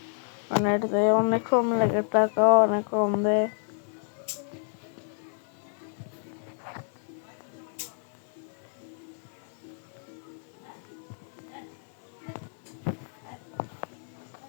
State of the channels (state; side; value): silent; right; 58 dB below the other